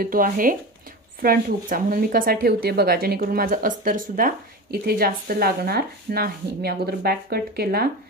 तो आहे फ्रंट हुकचा, म्हणून मी कसा ठेवते बघा, जेणेकरून माझं अस्तर सुद्धा इथे जास्त लागणार नाही. मी अगोदर बॅक कट केला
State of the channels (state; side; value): normal; both; correlation 0.27